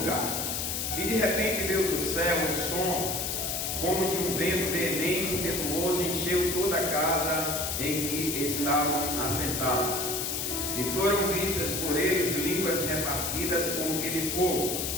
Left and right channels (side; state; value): left; noise; hiss, 1 dB below the sound